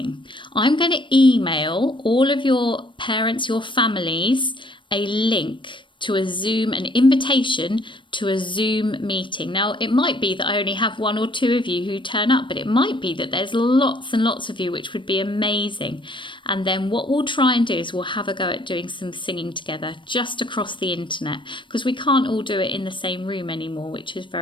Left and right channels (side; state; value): right; late; 0.24 ms